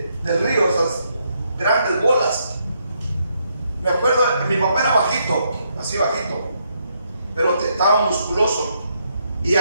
río, esas grandes bolas, Me acuerdo que mi papá era bajito, así bajito, pero estaba musculoso y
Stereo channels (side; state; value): both; inverted; correlation -0.76